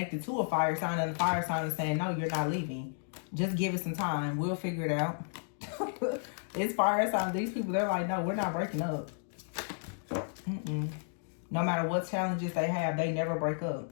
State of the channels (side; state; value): right; silent; digital silence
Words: to a fire sign, and the fire sign is saying, no, you're not leaving. Just give it some time. We'll figure it out. It's fire sign. These people, they're like, no, we're not breaking up. No matter what challenges they have, they never break up.